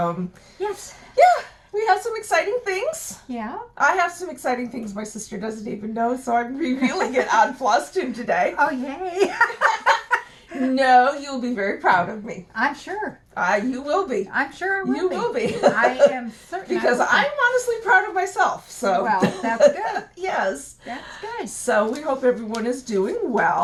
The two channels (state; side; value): identical; both; correlation 1.00